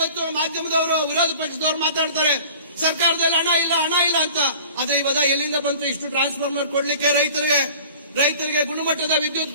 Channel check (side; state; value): both; inverted; correlation -0.45